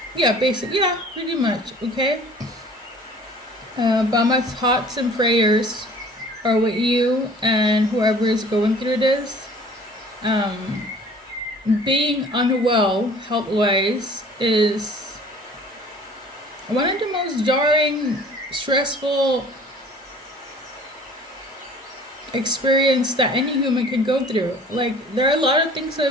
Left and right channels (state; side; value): normal; both; correlation 0.49